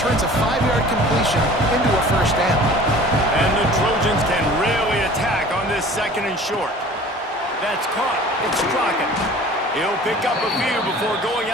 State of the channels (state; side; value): normal; both; correlation 0.45